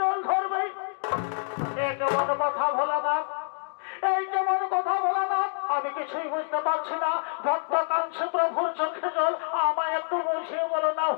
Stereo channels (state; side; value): silent; right; digital silence